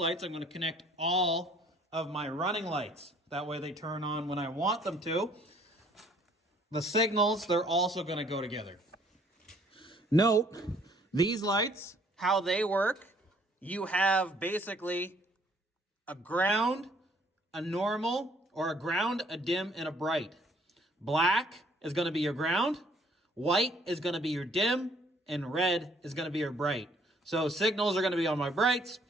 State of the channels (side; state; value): both; normal; correlation 0.61